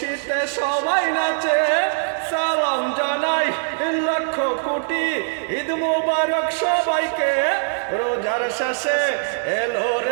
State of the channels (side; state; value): left; silent; digital silence